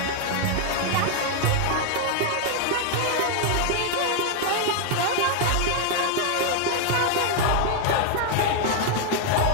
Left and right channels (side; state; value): both; different; correlation 0.00